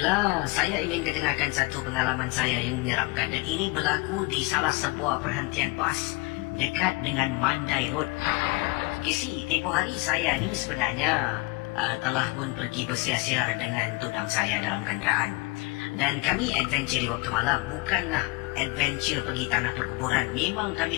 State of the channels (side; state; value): right; quieter; 24.5 dB